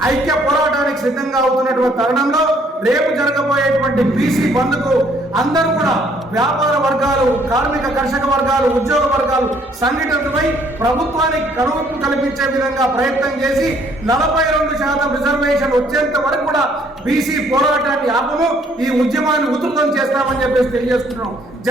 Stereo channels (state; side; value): normal; both; correlation 0.64